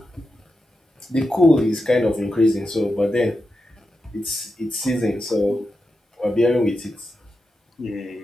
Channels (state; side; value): normal; both; correlation 0.89